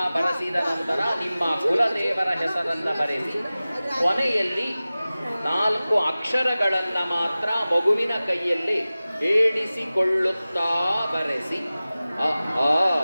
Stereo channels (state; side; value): inverted; both; correlation -0.97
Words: ಬರೆಸಿದ ನಂತರ ನಿಮ್ಮ ಕುಲದೇವರ ಹೆಸರನ್ನು ಬರೆಸಿ ಕೊನೆಯಲ್ಲಿ 4 ಅಕ್ಷರಗಳನ್ನು ಮಾತ್ರ ಮಗುವಿನ ಕೈಯಲ್ಲಿ ಏಣಿಸಿಕೊಳ್ಳುತ್ತಾ ಬರೆಸಿ ಅ ಆ